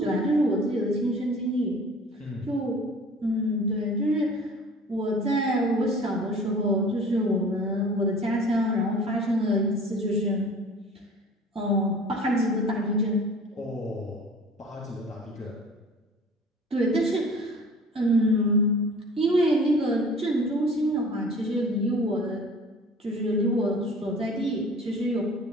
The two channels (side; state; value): both; normal; correlation 0.45